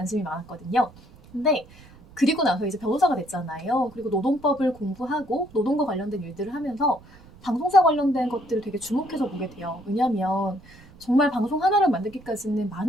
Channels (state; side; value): noise; right; rumble, 23 dB below the sound